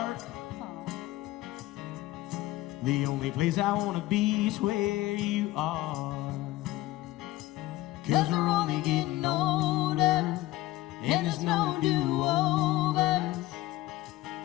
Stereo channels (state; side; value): quieter; right; 16.8 dB